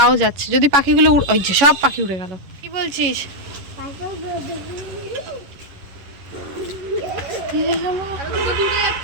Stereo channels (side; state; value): left; late; 11 ms